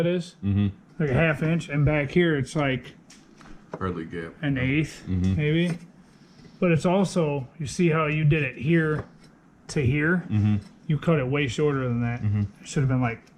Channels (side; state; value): both; identical; correlation 1.00